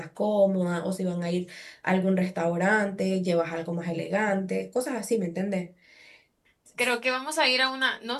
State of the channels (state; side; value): identical; both; correlation 1.00